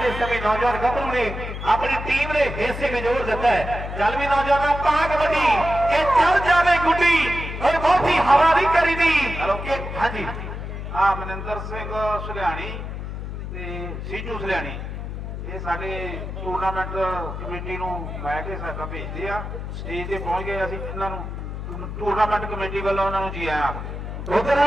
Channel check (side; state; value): left; noise; hum, 7 dB below the sound